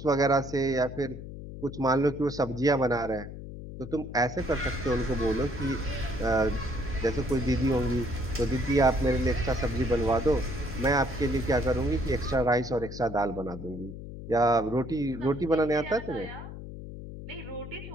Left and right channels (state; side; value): noise; left; hum, 11 dB below the sound